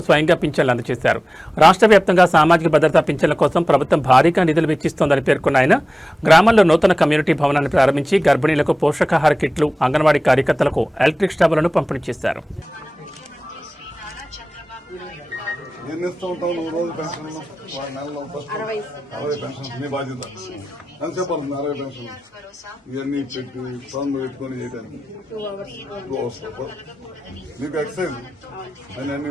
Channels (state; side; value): normal; both; correlation 0.97